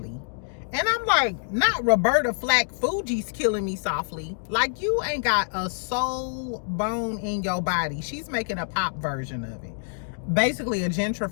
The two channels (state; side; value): silent; right; digital silence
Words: And I'm like, not Roberta Flack Fuji's Killing Me Softly. Like, you ain't got a soul bone in your body. She's making a pop version of it. Basically a